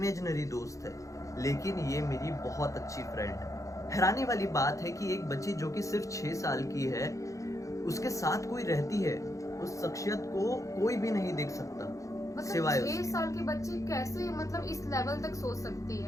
दोस्त है, लेकिन ये मेरी बहुत अच्छी फ्रेंड है। हैरानी वाली बात है कि एक बच्ची जो कि सिर्फ 6 साल की है, उसके साथ कोई रहती है, उस शख्सियत को कोई भी नहीं देख सकता, मतलब सिवाय 6 साल की बच्ची कैसे मतलब इस लेवल तक सोच सकती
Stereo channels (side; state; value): right; late; 0.15 ms